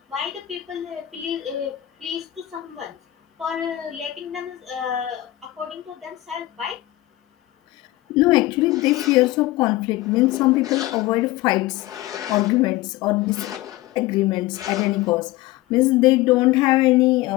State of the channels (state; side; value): quieter; right; 16.8 dB